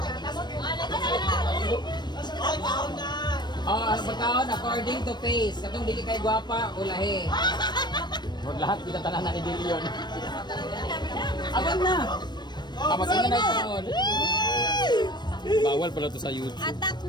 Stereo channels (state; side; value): late; right; 0.21 ms